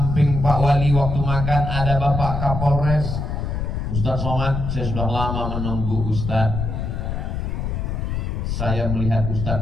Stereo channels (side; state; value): left; noise; rumble, 2 dB below the sound